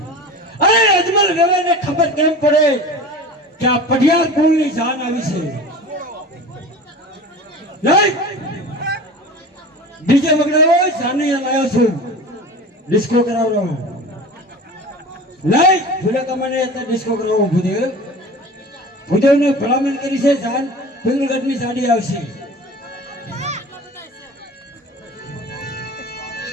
અરે અજમલ વેવાઈને ખબર કેમ પડે કે આ પઢિયાર કુળની જાન આવી છે? નહીં ડીજે વગડાવો, સાનિયા લાવ્યો છું, ડિસ્કો કરાવવાનો. નહીં ભૂલે કમાને અત્યારે ડિસ્કો કરાવો. ભૂદેવને ભલામણ કરી છે, જાન પિંગલગઢની સાડી આવશે.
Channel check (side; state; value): both; normal; correlation 0.36